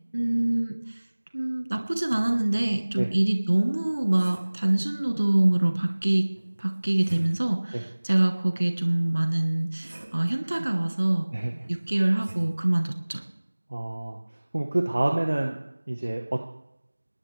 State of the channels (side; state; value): both; inverted; correlation -1.00